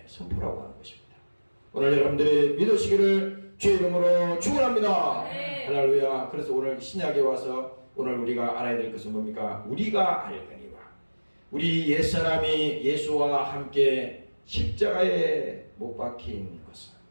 선포라고 하는 것입니다. 오늘 여러분들이 믿으시기를 주의 이름으로 축원합니다. 네. 할렐루야. 그래서 오늘 신약에 와서 오늘 우리가 알아야 될 것은 뭡니까? 우리가 알거니와 우리 옛사람이 예수와 함께 십자가에 못 박힌 것은,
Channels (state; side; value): inverted; both; correlation -1.00